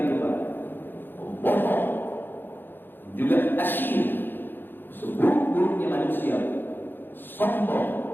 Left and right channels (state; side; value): late; right; 0.097 ms